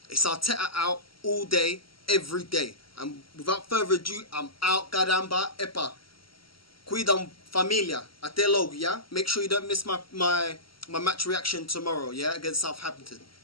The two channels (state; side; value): late; right; 0.74 ms